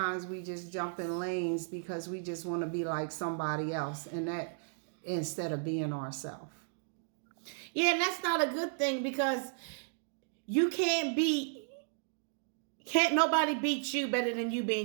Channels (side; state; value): left; silent; digital silence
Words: we just jump in lanes because we just want to be like somebody else, and that instead of being ourselves. Yeah, and that's not a good thing, because you can't nobody beat you better than you